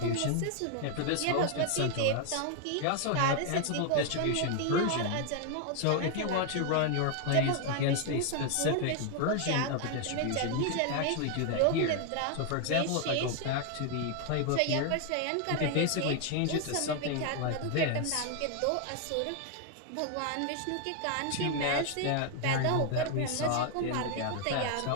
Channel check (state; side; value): different; both; correlation 0.00